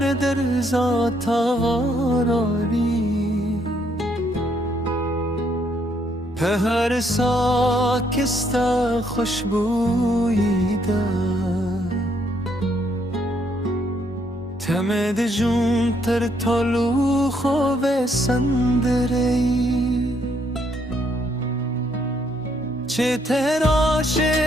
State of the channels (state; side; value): normal; both; correlation 0.72